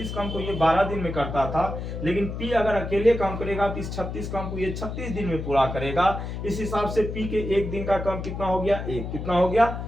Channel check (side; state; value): left; noise; hum, 6 dB below the sound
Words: काम को ये 12 दिन में करता था, लेकिन पी अगर अकेले काम करेगा तो इस 36 काम को ये 36 दिन में पूरा करेगा। इस हिसाब से पी के एक दिन का काम कितना हो गया, 1। कितना हो गया,